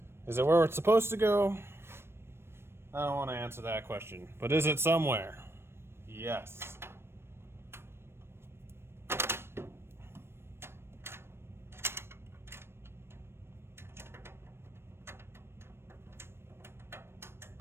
Is it where it's supposed to go? I don't want to answer that question. But is it somewhere? Yes.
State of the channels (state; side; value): late; left; 0.12 ms